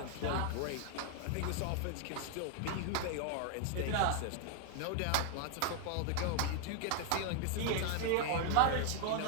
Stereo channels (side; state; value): both; different; correlation 0.00